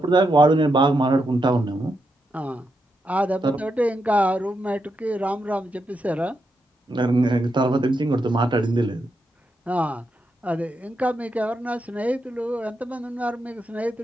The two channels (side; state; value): both; normal; correlation 0.84